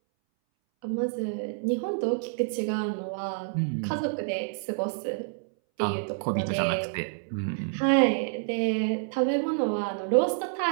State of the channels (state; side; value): silent; left; 59 dB below the other